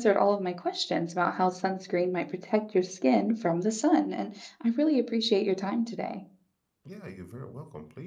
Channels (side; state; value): both; identical; correlation 1.00